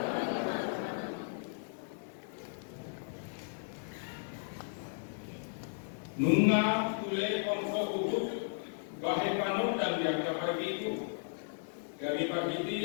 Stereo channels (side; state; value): right; silent; 54 dB below the other